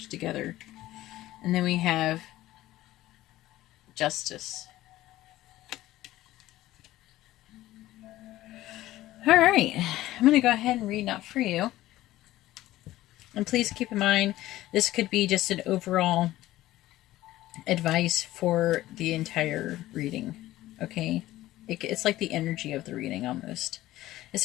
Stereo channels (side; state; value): right; quieter; 15.7 dB